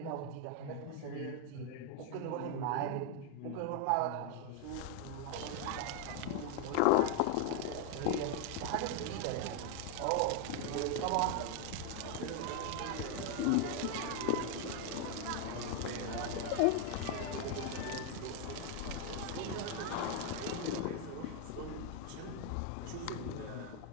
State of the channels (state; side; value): different; both; correlation 0.01